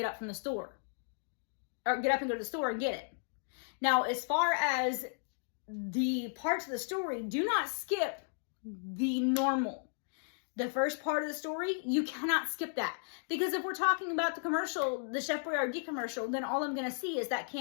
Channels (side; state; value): right; silent; digital silence